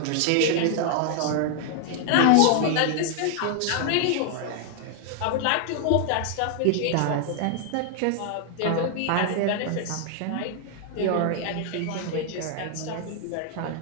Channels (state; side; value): different; both; correlation 0.00